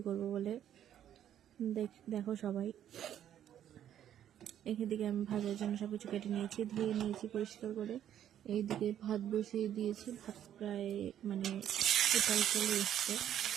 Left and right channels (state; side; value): quieter; left; 10.5 dB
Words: করব বলে। দেখো সবাই, এখান থেকে আমি ভাজার জন্য সব কিছু কেটে নিয়েছি, ধুয়ে নিয়েছি পরিষ্কার করে। এইদিকে ভাত বসিয়ে দিয়েছি, ভাত প্রায় উতাল চলে এসছে।